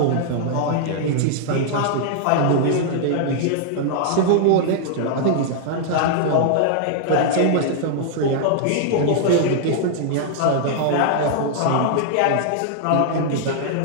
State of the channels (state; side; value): different; both; correlation -0.01